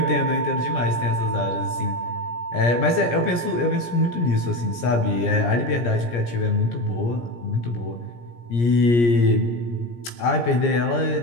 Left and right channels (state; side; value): late; right; 17 ms